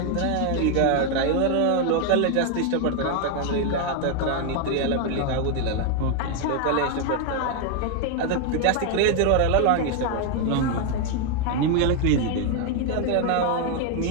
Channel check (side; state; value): both; different; correlation 0.01